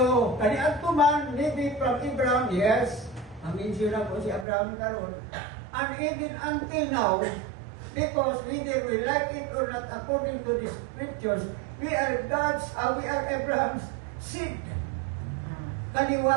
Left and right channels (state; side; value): drops out; left; at 4.5 s